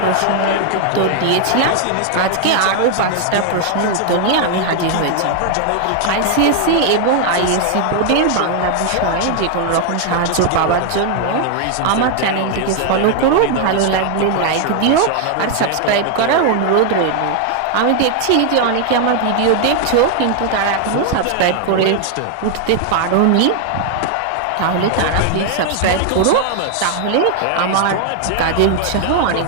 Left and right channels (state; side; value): different; both; correlation 0.00